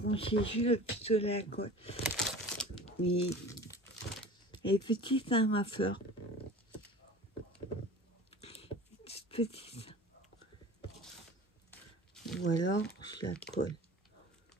juste le pistolet à colle. Oui. Et petite, hein, ma fleur. Petite. Ou alors, je la colle.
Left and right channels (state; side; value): normal; both; correlation 0.40